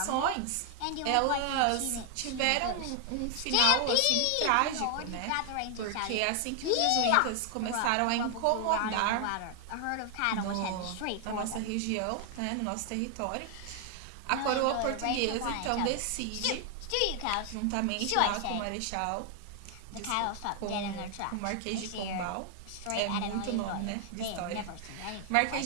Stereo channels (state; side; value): different; both; correlation 0.00